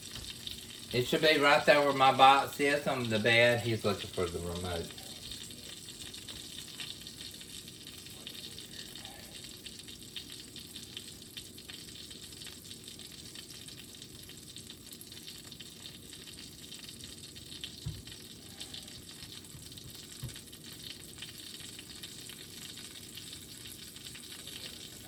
It should be right there where my box is on the bed. He's looking for the remote.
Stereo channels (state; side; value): identical; both; correlation 1.00